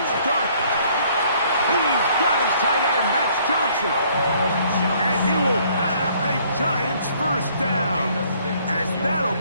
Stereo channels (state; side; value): inverted; both; correlation -0.62